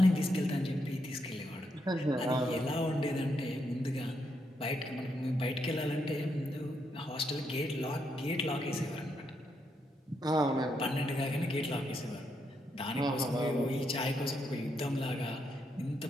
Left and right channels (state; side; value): normal; both; correlation 0.79